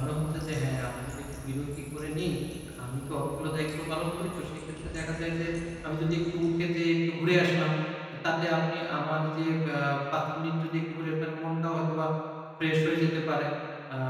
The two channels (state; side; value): identical; both; correlation 1.00